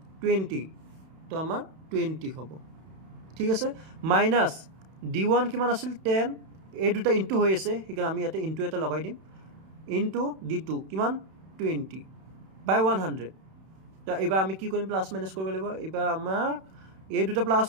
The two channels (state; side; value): late; left; 31 ms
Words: 20 তো আমাৰ 20 হ'ব ঠিক আছে মাইনাস d1 কিমান আছিল 10 এই দুটা ইনটু হৈ আছে সেইকাৰণে আমি ইয়াতে ইনটু এটা লগাই দিম ইনটু d2 কিমান 20 by 100 তো এবাৰ আমি কি কৰিম প্লাস মাইনাস কৰিব লাগিব এবাৰ আমাৰ এই দুটা প্লাস